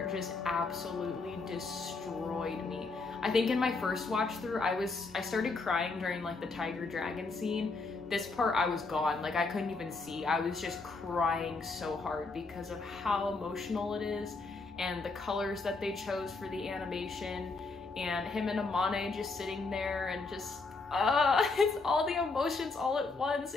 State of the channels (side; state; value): right; quieter; 3.9 dB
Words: just absolutely destroyed me. I think in my first watch through, I started crying during like the tiger dragon scene. This part I was gone, like I couldn't even see. I was just crying so hard because of how emotional it is and the colors that they chose for the animation, and him and Amane just sitting there and just it's all the emotions all at once.